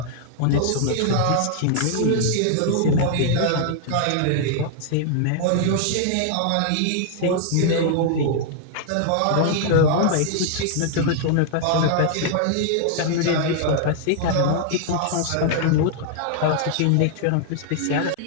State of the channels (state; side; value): different; both; correlation 0.00